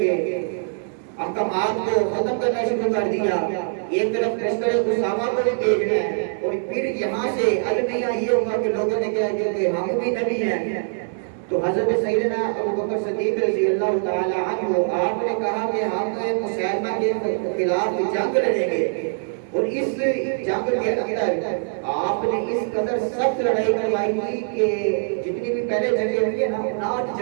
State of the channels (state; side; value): silent; left; digital silence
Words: احکامات کو ختم کرنا شروع کر دیا. ایک طرف لشکر اسامہ کو بھی بھیجنا ہے، اور پھر یہاں سے المیہ یہ ہوگا کہ لوگوں نے کہا کہ ہم بھی نبی ہیں. تو حضرت سیدنا ابوبکر صدیق رضی اللہ تعالی عنہ آپ نے کہا کہ ہم مسیلمہ کے خلاف جنگ لڑیں گے. اور اس جنگ کے اندر آپ نے اس قدر سخت لڑائی کروائی تھی کہ جتنی بھی پہلے جنگیں ہوئی ہیں نا 9